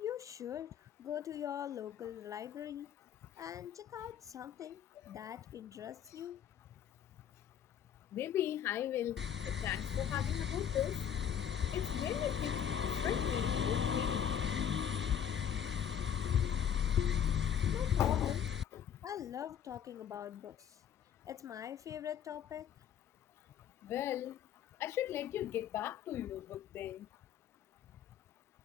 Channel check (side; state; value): right; quieter; 9.0 dB